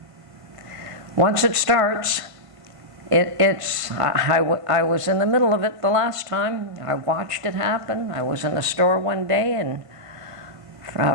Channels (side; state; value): left; late; 1.5 ms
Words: once it starts, I was in the middle of it the last time. I watched it happen. I was in the store one day, and